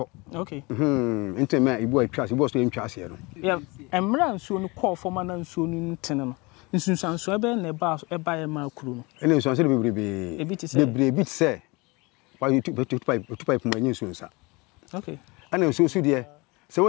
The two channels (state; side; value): quieter; right; 25.9 dB